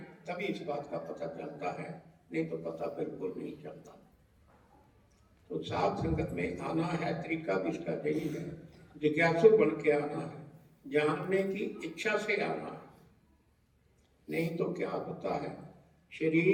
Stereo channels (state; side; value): identical; both; correlation 1.00